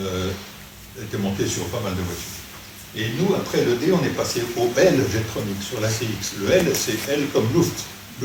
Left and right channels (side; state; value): both; identical; correlation 1.00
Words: était monté sur pas mal de voitures. Et nous, après le D, on est passé au L-Jetronic sur l'ACX. Le L, c'est L comme Luft.